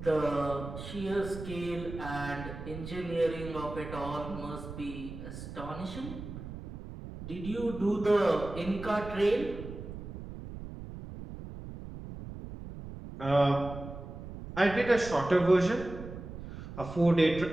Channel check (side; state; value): right; noise; rumble, 11 dB below the sound